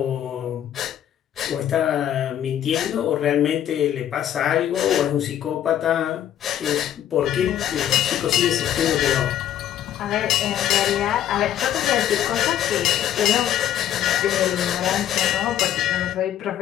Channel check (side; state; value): right; quieter; 11.0 dB